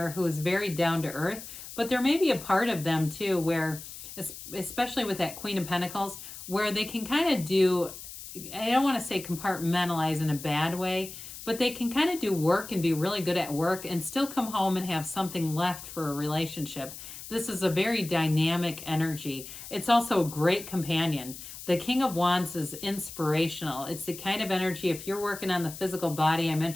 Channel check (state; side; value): noise; left; hiss, 12 dB below the sound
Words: who is very down to earth, but there may be a part of them too where, especially with that Queen of Pentacles, where they can kind of do, I don't want to say compartmentalize in a bad way, but they can kind of do work and be really good at work and still come home and have something left for a relationship. This is a very dynamic energy. It's also a great companion. The King of Wands is inspirational. It's the kind of energy, if you're working on the physical body, I